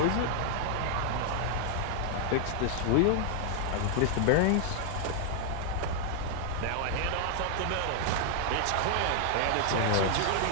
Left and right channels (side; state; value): both; different; correlation 0.00